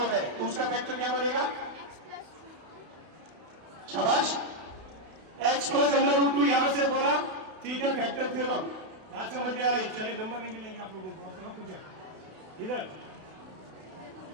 है, तो उसका फैक्टर क्या बनेगा? शाबाश, x प्लस अंडर रूट 2 यहां से बोला, ठीक है, फैक्टर थ्योरम बात समझ में आ रही। चलिए नंबर नहीं मिलेंगे आप लोगों को, आपको पूछे इधर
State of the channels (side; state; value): left; late; 32 ms